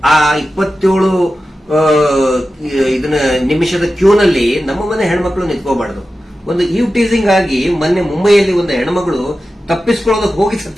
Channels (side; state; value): both; normal; correlation 0.93